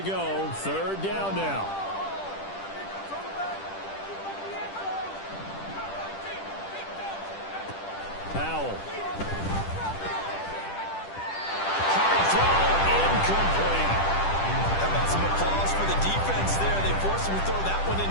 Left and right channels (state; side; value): late; right; 10 ms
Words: go. 3rd down now. Powell. Hard throw, incomplete. How about some applause for the defense there? They forced him to throw that one